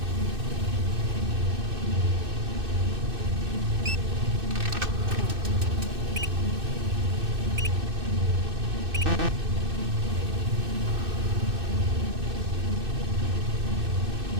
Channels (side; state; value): left; late; 2.6 ms